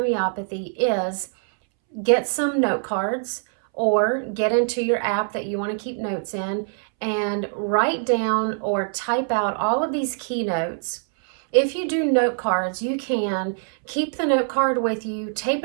is get some note cards or get into your app that you want to keep notes in and write down or type out all of these keynotes. If you do note cards, you can keep the note card with you, tape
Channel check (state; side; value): silent; left; 63 dB below the other